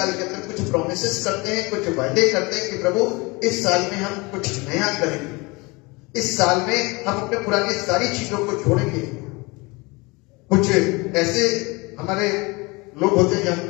के अंदर कुछ प्रोमिसेस करते हैं, कुछ वायदे करते हैं कि प्रभु इस साल में हम कुछ नया करेंगे, इस साल में हम अपने पुरानी सारी चीजों को छोड़ेंगे। कुछ ऐसे हमारे लोग होते हैं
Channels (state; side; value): quieter; right; 25.6 dB